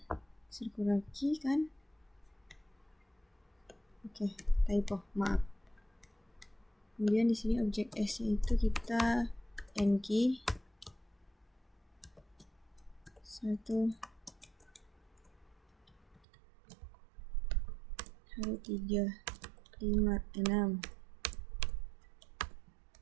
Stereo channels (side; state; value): left; drops out; at 16.2 s